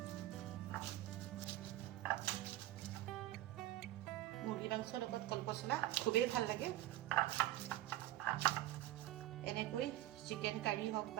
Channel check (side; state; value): left; quieter; 15.2 dB